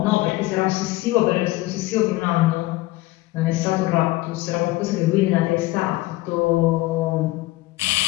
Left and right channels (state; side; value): quieter; right; 18.7 dB